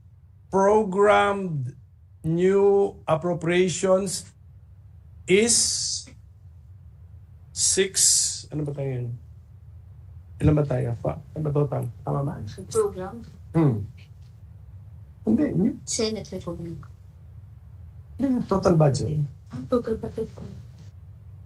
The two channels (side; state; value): both; identical; correlation 1.00